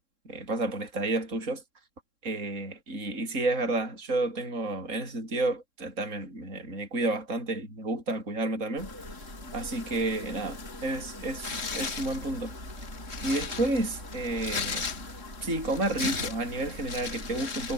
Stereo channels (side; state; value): left; late; 3.7 ms